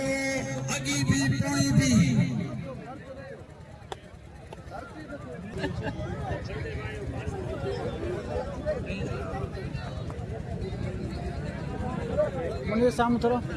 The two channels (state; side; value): identical; both; correlation 1.00